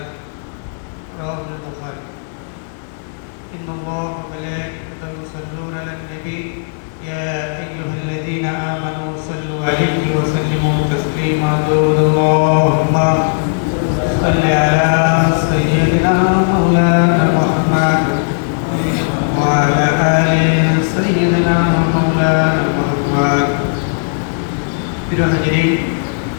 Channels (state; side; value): silent; right; digital silence